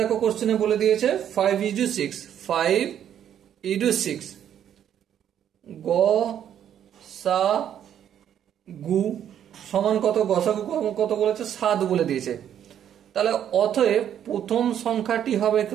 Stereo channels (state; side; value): quieter; left; 9.8 dB